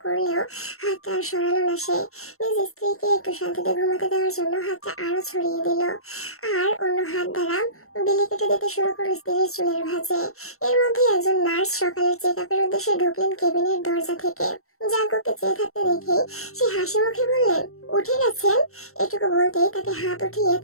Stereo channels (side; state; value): right; late; 0.63 ms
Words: করলেও হাতটা আর সরালো না সে। নিজ স্ত্রীকে একটু শান্তিতে ঘুমাতে দেওয়ার জন্য হাতটা আরো ছড়িয়ে দিল, আর অন্য হাত দ্বারা বিলি কেটে দিতে শুরু করলো স্ত্রীর চুলের ভাঁজে। এর মধ্যে একজন নার্স সকালের চেক আপের উদ্দেশ্যে ঢুকলেন কেবিনের দরজা থেকে। জাঙ্কুককে চেয়ে থাকতে দেখে সে হাসি মুখে বললেন, উঠে গেছেন? এটুকু বলতেই তাকে হাত উঠিয়ে